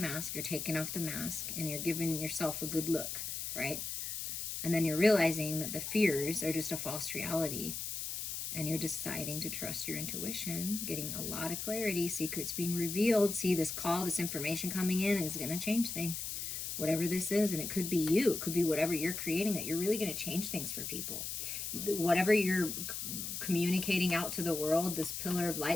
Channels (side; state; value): left; noise; hiss, 4 dB below the sound